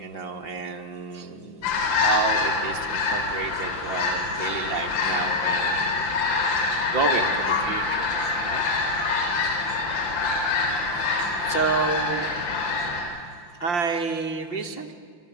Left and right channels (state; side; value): late; right; 5.8 ms